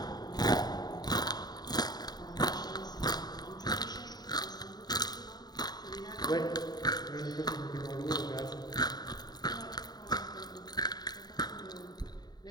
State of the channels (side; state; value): right; late; 0.20 ms